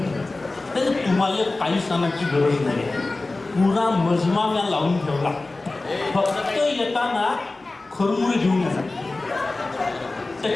तुम्हाला काही सांगण्याची गरज नाही. पुरा मजमा मी लावून ठेवला. फक्त येताना खरमुळे घेऊन येतात.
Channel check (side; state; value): right; quieter; 3.2 dB